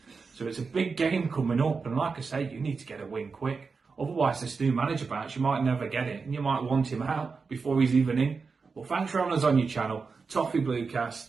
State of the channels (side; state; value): left; quieter; 4.8 dB